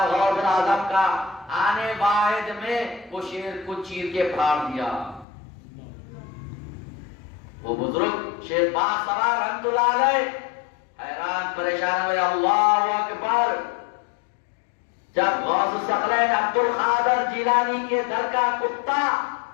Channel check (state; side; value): drops out; right; at 5.2 s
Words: غوث الاعظم کا، آنے واحد میں وہ شیر کو چیر کے پھاڑ دیا. وہ بزرگ شیر پاک سوار رحمت اللہ علیہ حیران پریشان ہوئے. اللہ اکبر! جب غوث الثقلین عبد القادر جیلانی کے در کا کتا